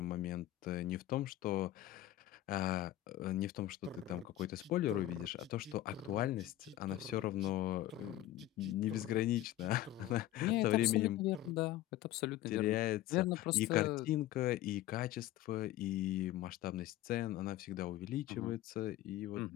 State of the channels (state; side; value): quieter; right; 14.4 dB